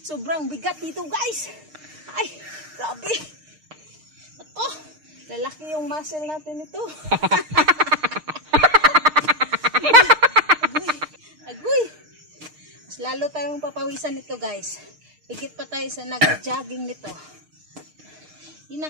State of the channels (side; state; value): left; late; 6.5 ms